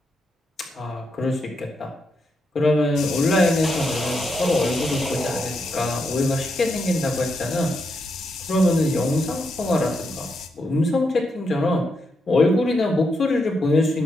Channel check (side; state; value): both; normal; correlation 0.82